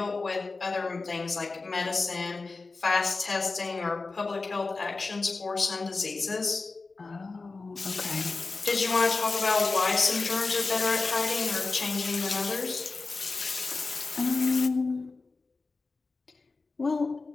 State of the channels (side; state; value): right; quieter; 3.8 dB